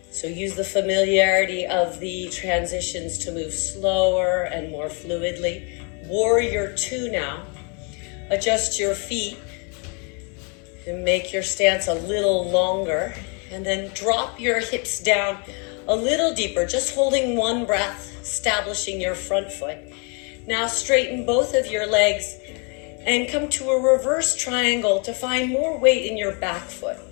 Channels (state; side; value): quieter; right; 35.3 dB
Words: So use the familiarity of the transitions to move slower and more fluidly. Warrior 2 now. Adjust your feet and make your stance a little longer. And then drop your hips down a little deeper, just holding one breath, establishing your front foot. Now straighten both of your legs and come to a reverse triangle to find more weight in your back foot.